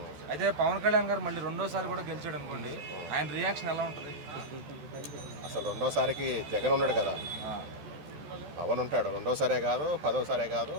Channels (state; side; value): late; left; 13 ms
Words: అయితే పవన్ కళ్యాణ్ గారు మళ్ళీ రెండోసారి కూడా గెలిచాడు అనుకోండి, ఆయన రియాక్షన్ ఎలా ఉంటుంది? అసలు రెండోసారికి జగన్ ఉన్నాడు కదా, పవన్ ఉంటాడు. రెండోసారే కాదు, పదోసారే కాదు,